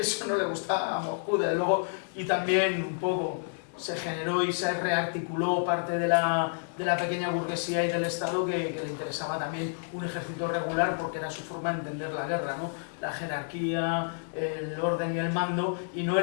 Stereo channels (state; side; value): silent; right; 58 dB below the other